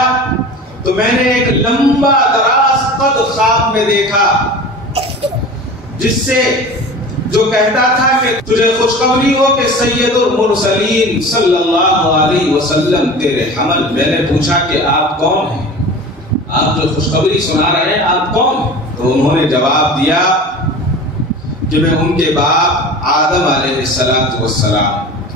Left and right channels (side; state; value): both; normal; correlation 0.36